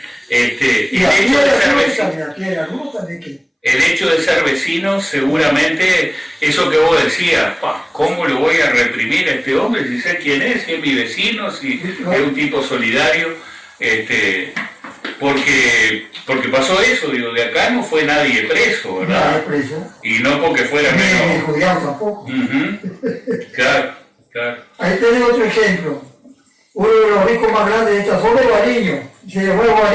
Y el hecho de ser vecino, seguramente, eso que vos decías, ¿cómo lo voy a reprimir a este hombre si sé quién es, si es mi vecino, si es un tipo solidario? Porque pasó eso, digo, de acá no fue nadie preso, ¿verdad? Nadie preso. Y no porque fuera menos. Ni judío tampoco. Claro. Ahí tenés otro ejemplo. Uno de los ricos más grandes de esta zona es Bariño. Se llevó a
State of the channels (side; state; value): both; identical; correlation 1.00